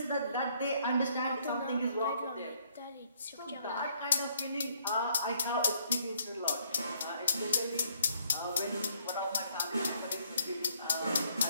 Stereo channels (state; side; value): inverted; both; correlation -0.67